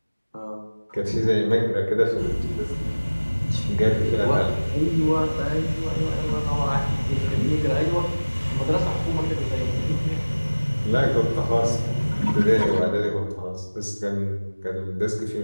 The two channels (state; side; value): inverted; both; correlation -1.00